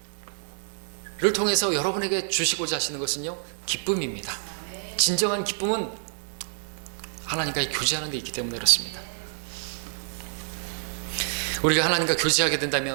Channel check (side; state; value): left; silent; digital silence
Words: 통해서 여러분에게 주시고자 하시는 것은요, 기쁨입니다. 진정한 기쁨은 하나님과 교제하는 데 있기 때문에 그렇습니다. 우리가 하나님과 교제하게